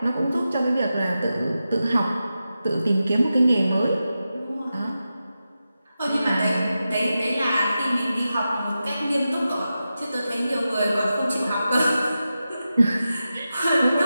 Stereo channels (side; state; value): both; inverted; correlation -0.91